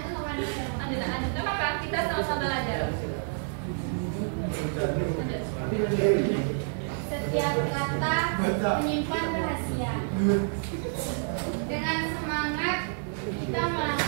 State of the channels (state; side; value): silent; left; 59 dB below the other